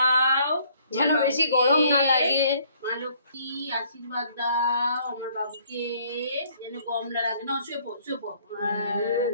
যেন বেশি গরম না লাগে। মা লক্ষ্মী আশীর্বাদ দাও আমার বাবুকে যেন গরম না লাগে। না শুয়ে পড়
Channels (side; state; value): both; inverted; correlation -0.62